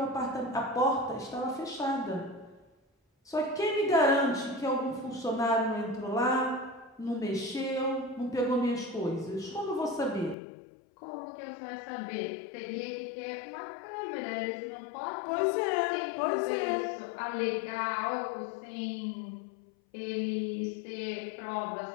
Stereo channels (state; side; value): drops out; right; at 10.4 s